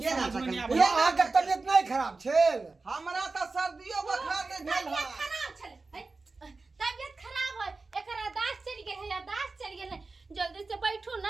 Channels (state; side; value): quieter; left; 3.8 dB